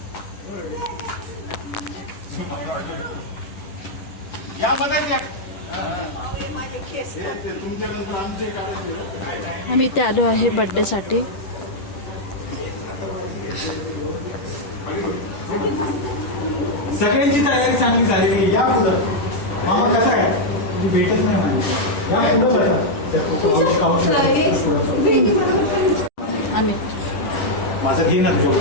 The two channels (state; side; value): late; right; 10 ms